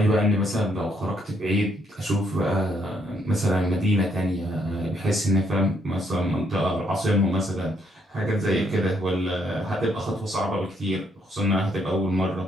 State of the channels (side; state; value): both; normal; correlation 0.72